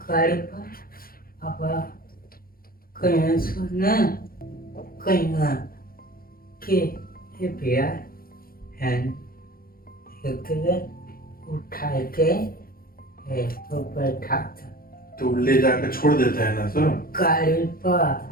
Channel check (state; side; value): late; right; 0.42 ms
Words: गाड़ी पर। अब कहीं सुना कहीं के ये भैया है एक उठा के तो बैठा था तो ले जाकर छोड़ देते हैं ना सब गाड़ी पर।